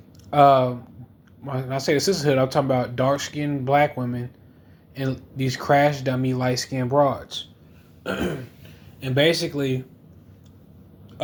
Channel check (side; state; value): both; identical; correlation 1.00